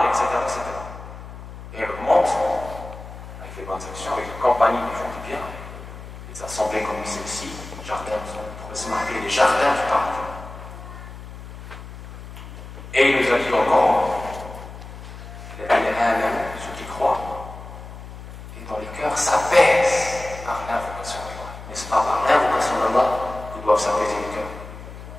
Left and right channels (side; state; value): left; noise; hum, 13 dB below the sound